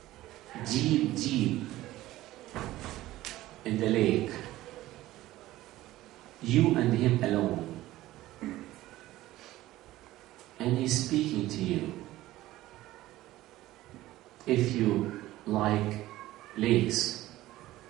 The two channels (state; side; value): quieter; left; 16.1 dB